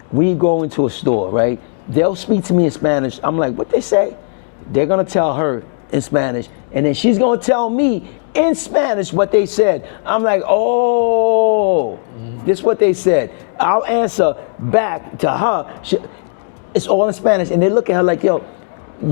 We go into a store, right? They'll speak to me in Spanish. I'm like, what they say? They're gonna tell her in Spanish, and then she's gonna tell me in Spanish what they said. I'm like, oh, this is what they said. I'll answer back to her. It's all in Spanish, and they look at her like, yo,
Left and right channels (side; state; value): right; silent; 69 dB below the other